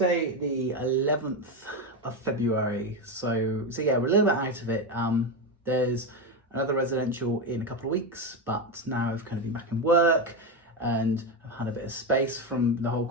the 11th of February. So yeah, we're a little bit out of it. There's another residential in a couple of weeks, but now I've kind of been back in work and I've had a bit of space from the whole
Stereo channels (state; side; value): normal; both; correlation 0.13